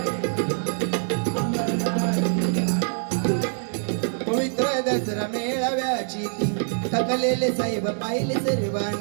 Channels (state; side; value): silent; left; digital silence